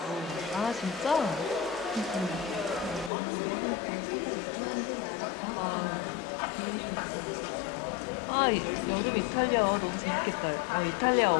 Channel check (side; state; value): right; drops out; at 3.1 s